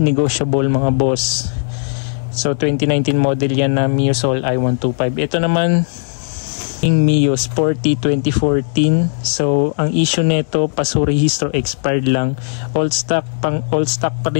negotiable mga boss. So 2019 model yan na Mio Soul i125. Ito naman yung Mio Sporty 2014. So ang issue nito, paso rehistro, expired lang. All stock pa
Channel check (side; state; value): right; silent; digital silence